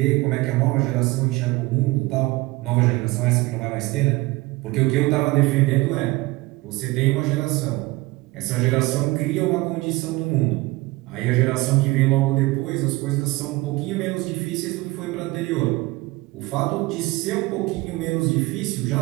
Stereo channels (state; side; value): quieter; left; 21.1 dB